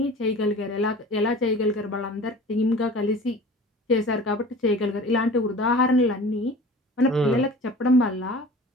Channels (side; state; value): both; normal; correlation 0.41